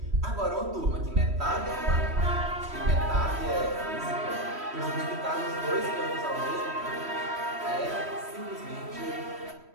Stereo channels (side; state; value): left; late; 3.1 ms